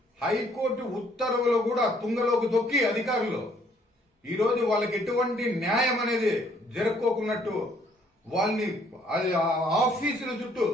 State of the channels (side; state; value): both; normal; correlation 0.64